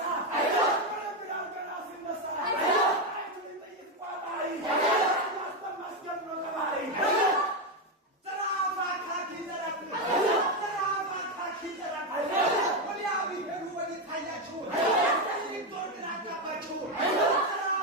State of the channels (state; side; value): normal; both; correlation 0.08